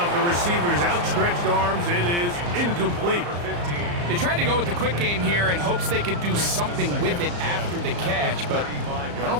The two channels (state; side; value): late; left; 34 ms